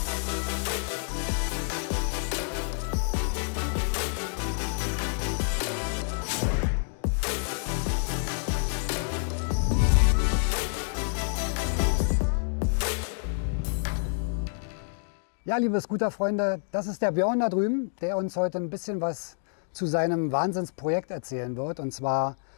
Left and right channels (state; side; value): silent; right; digital silence